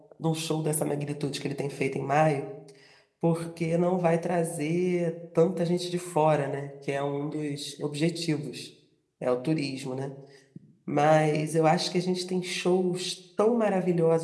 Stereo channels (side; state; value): both; identical; correlation 1.00